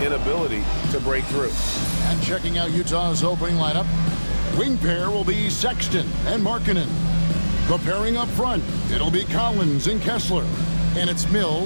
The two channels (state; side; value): inverted; both; correlation -1.00